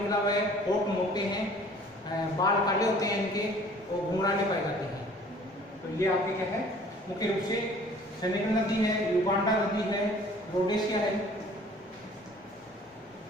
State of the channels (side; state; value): both; normal; correlation 0.52